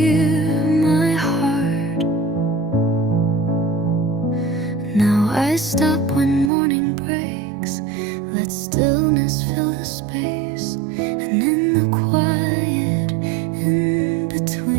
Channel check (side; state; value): left; drops out; at 6.5 s